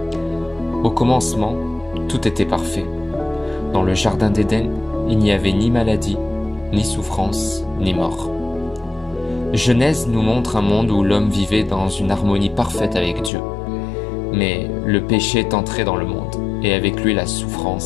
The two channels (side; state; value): right; drops out; at 13.3 s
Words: Au commencement, tout était parfait. Dans le jardin d'Éden, il n'y avait ni maladie, ni souffrance, ni mort. Genèse nous montre un monde où l'homme vivait dans une harmonie parfaite avec Dieu. Mais le péché est entré dans le monde, et avec lui la